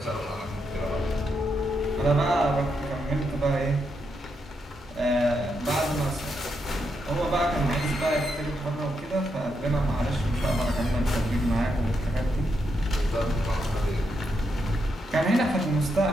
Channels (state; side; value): normal; both; correlation 0.82